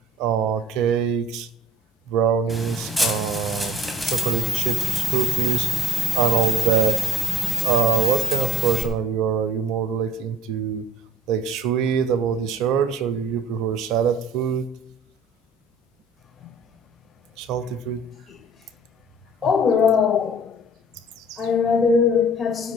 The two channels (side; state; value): both; normal; correlation 0.58